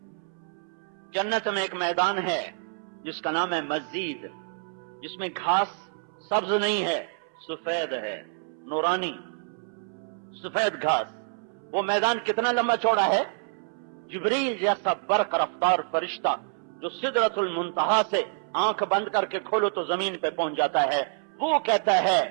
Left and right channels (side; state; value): left; silent; 60 dB below the other